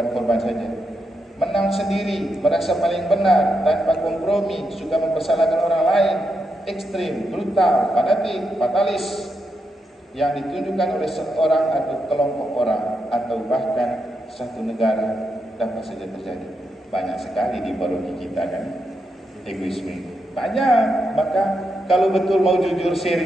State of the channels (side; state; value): both; normal; correlation 0.83